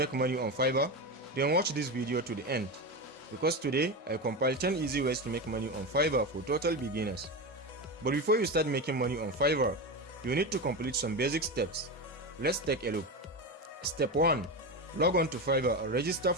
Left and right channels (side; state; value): both; normal; correlation 0.18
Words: money on Fiverr, then watch this video to the end, because today I compiled 10 easy ways to make money on Fiverr for total beginners. But before you start making money on Fiverr, you need to complete some basic steps. Let's take a look. Step 1. Log on to Fiverr and register